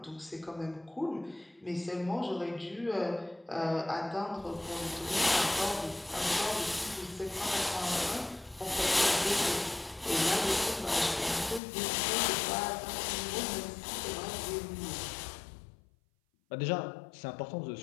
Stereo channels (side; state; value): right; drops out; at 11.6 s